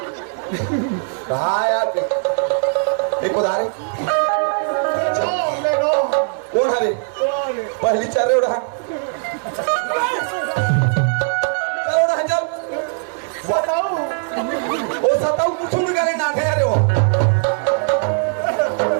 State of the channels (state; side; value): silent; left; 66 dB below the other